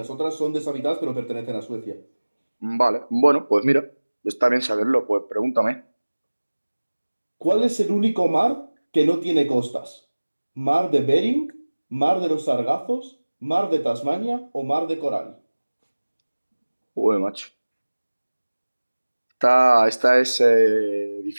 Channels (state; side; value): inverted; both; correlation -1.00